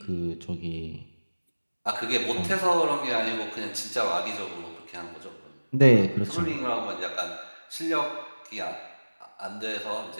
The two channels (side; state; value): both; inverted; correlation -1.00